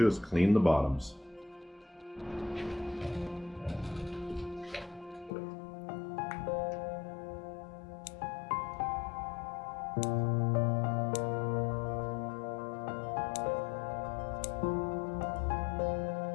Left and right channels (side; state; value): right; drops out; at 5.3 s